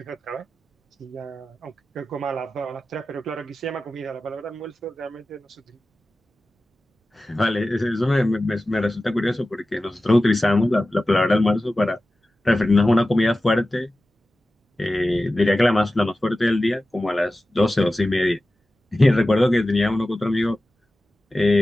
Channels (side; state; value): both; normal; correlation 0.95